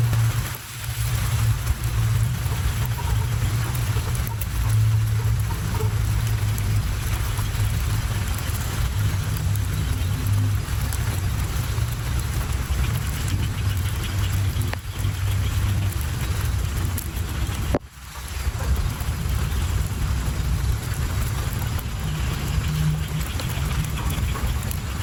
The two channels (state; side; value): identical; both; correlation 1.00